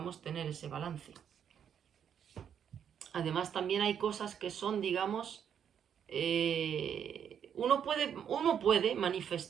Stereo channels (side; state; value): left; quieter; 8.4 dB